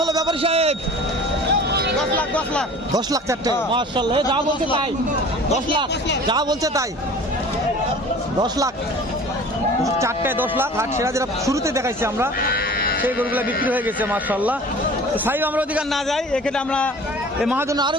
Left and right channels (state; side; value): normal; both; correlation 0.43